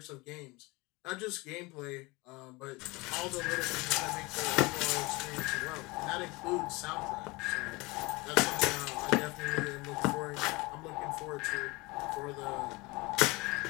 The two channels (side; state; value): right; quieter; 24.1 dB